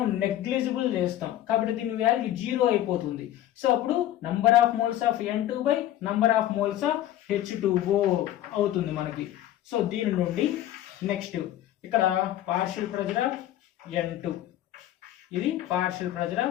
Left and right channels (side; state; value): right; quieter; 13.1 dB